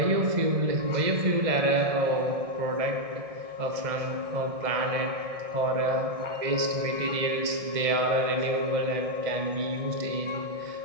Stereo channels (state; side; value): late; left; 1.6 ms